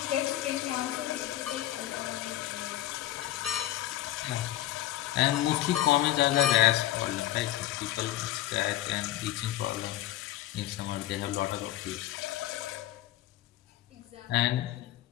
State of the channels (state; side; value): quieter; right; 14.2 dB